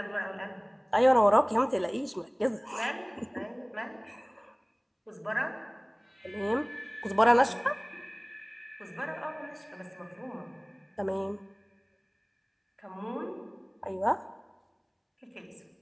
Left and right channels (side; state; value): both; identical; correlation 1.00